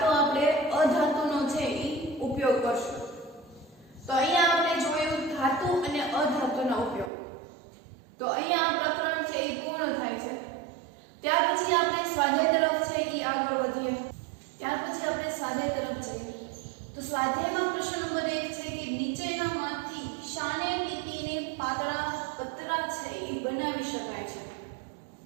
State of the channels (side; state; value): left; drops out; at 7.1 s